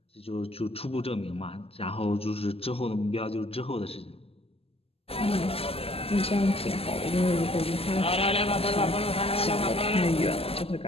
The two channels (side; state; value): right; late; 0.28 ms